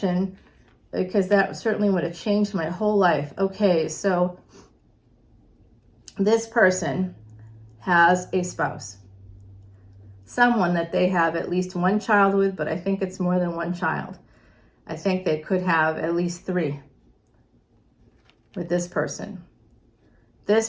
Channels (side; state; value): both; identical; correlation 1.00